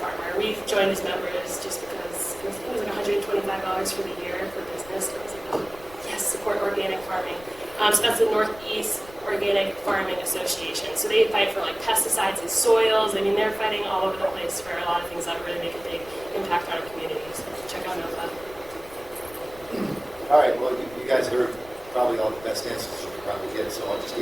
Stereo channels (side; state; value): left; noise; rumble, 20 dB below the sound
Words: We've joined as members just because it was $125 for the year for business. I was like, oh, yes, support organic farming. So that's the Northeast Organic Farming Association. So they fight for like pesticides in soils. I mean, they're fighting all over the place for a lot of things that really make a big impact on our communities. So check out NOFA. All right, well, you guys heard probably all the best answers you could probably get, so I'll just